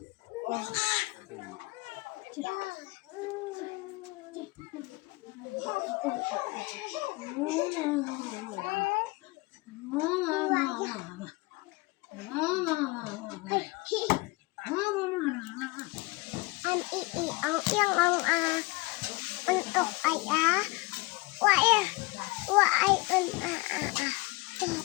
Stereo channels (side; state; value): right; quieter; 23.2 dB